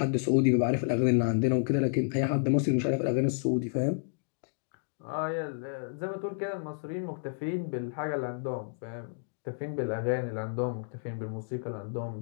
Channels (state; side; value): silent; right; digital silence